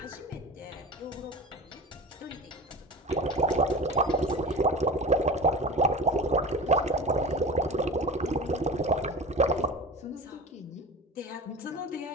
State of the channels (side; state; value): both; normal; correlation 0.33